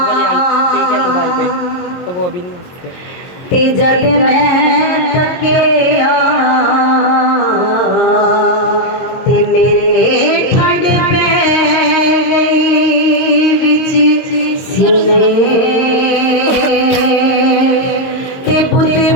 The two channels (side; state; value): right; late; 22 ms